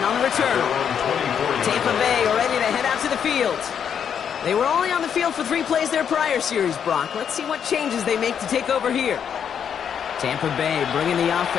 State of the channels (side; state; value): right; quieter; 8.0 dB